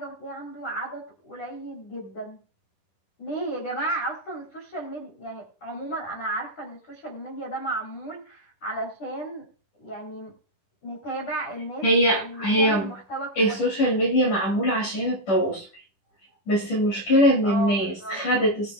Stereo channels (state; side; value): late; right; 10 ms